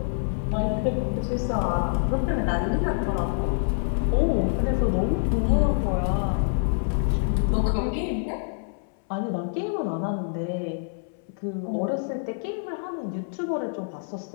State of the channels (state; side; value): silent; right; 61 dB below the other